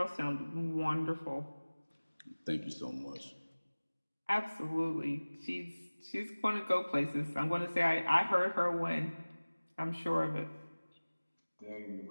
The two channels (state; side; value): inverted; both; correlation -1.00